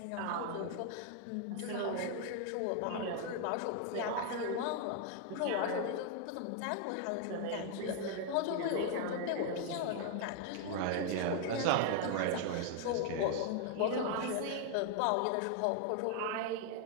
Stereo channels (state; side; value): different; both; correlation 0.00